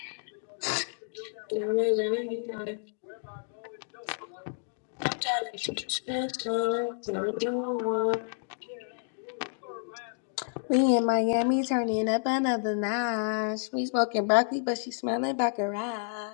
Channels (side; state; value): right; silent; digital silence